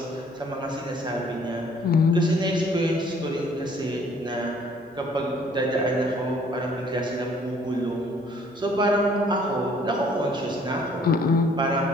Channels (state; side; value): normal; both; correlation 0.59